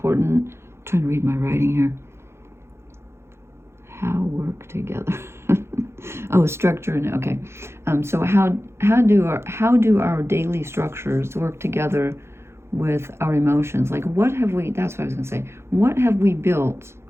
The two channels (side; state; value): left; late; 0.12 ms